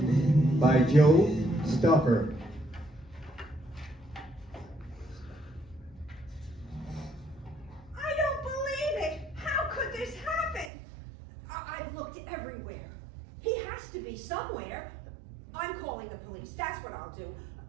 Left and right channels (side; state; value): left; drops out; at 10.7 s